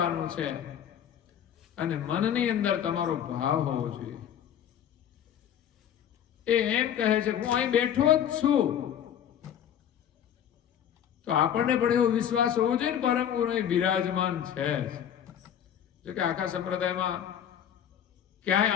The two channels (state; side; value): quieter; right; 9.6 dB